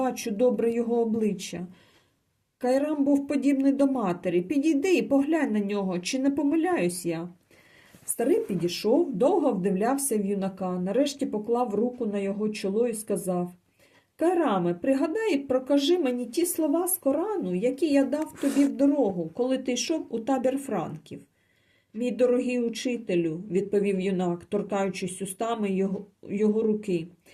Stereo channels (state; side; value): identical; both; correlation 1.00